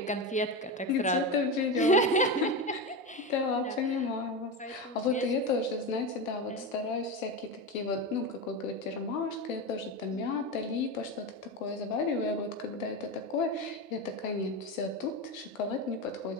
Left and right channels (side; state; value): both; normal; correlation 0.19